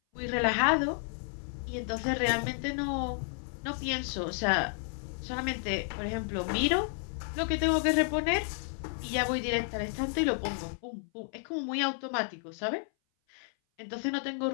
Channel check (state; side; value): silent; right; 57 dB below the other